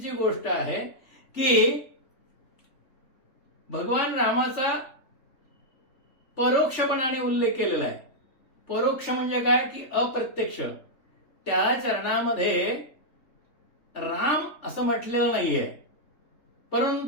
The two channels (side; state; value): right; late; 3.4 ms